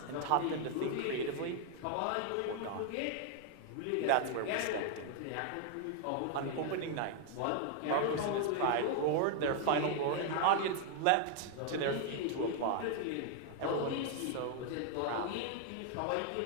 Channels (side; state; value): both; different; correlation 0.00